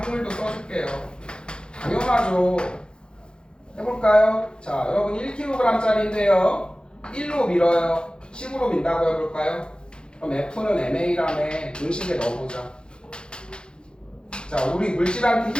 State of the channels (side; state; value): right; late; 0.050 ms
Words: 한글도 써줄게요. 당연하죠. 해볼까요? 자, 여러분 1kg짜리인데요. 1로 밀어요. 10으로 민다고 해볼까요? 그럼 F는 MA라며 공식에 넣어보자. 자, 우리 물질한테